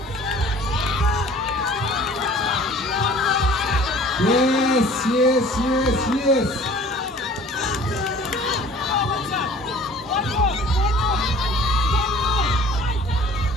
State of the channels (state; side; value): normal; both; correlation 0.49